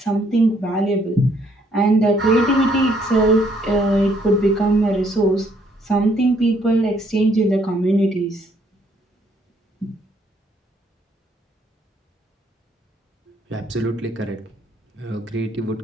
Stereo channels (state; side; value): normal; both; correlation 0.67